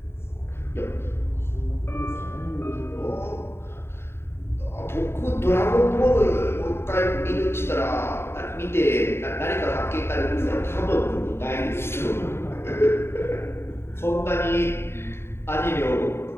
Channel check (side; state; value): right; late; 0.12 ms